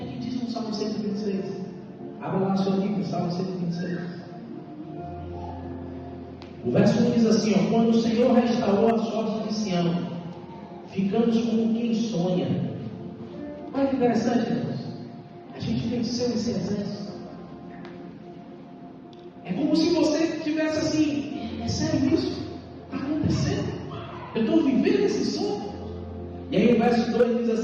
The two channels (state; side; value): identical; both; correlation 1.00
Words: é que diz no Salmo 126? Abra lá a sua Bíblia, Salmo 126. O verso 1 diz assim, ó: quando o Senhor restaurou a sorte de Sião, ficamos como quem sonha. Olha que interessante, irmãos. A gente venceu esse exército. É como se você tivesse assim, é sério isso? Está acontecendo? Eu estou vivendo esse sonho? E aí o verso 2 diz